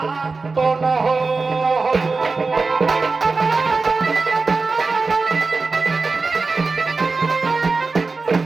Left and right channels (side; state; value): left; quieter; 4.1 dB